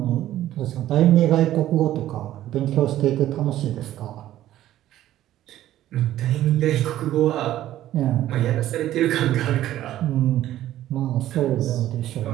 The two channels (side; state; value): left; quieter; 13.3 dB